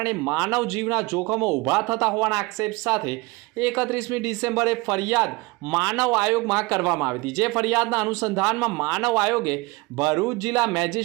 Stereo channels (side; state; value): left; quieter; 23.6 dB